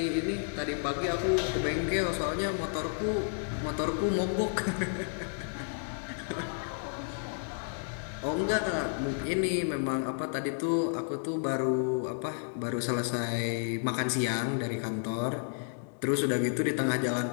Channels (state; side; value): silent; right; digital silence